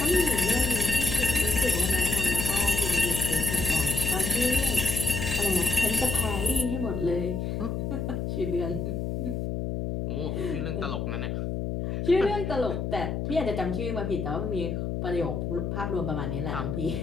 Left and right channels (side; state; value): left; noise; hum, 2 dB below the sound